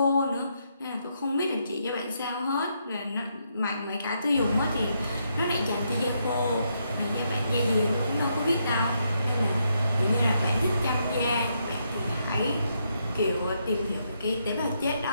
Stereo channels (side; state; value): both; inverted; correlation -0.78